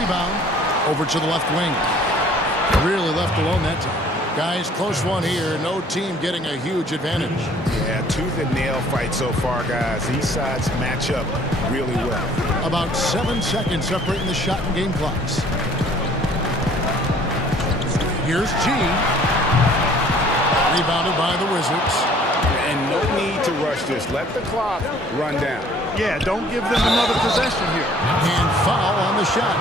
over to the left wing. Really left alone that time. Guys, close one here. No team getting a huge advantage. Yeah, tooth and nail fight so far, guys. These sides match up really well. About 7 seconds separating the shot and game clocks. Here's G. Rebounded by the Wizards. And no need to rush this. Let the clock run down. Yeah, don't give them another possession here. And foul on the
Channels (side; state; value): both; normal; correlation 0.55